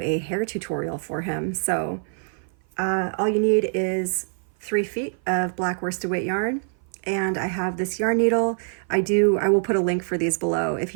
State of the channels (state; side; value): silent; left; 56 dB below the other